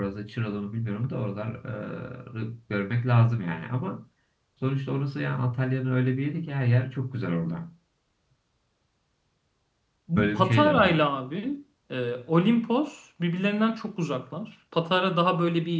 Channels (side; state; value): both; identical; correlation 1.00